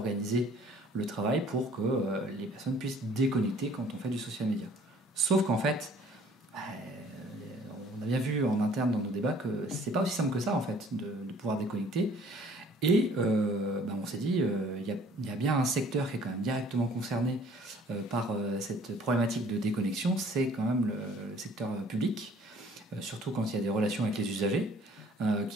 le travail pour que les personnes puissent déconnecter quand on fait du social media. Sauf qu'en fait, on a bien vu en interne dans nos débats que c'est pas aussi simple que ça en fait de pouvoir déconnecter. Et on s'est dit, il y a bien un secteur qui est quand même directement concerné par cette problématique de déconnexion, c'est quand même le secteur public, surtout quand il y a des relations avec les usagers,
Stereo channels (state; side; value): normal; both; correlation 0.55